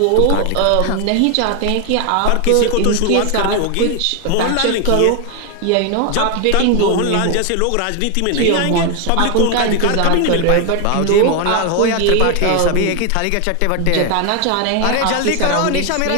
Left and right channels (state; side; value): different; both; correlation 0.01